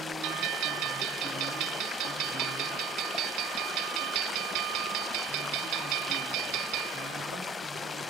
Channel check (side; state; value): left; quieter; 4.1 dB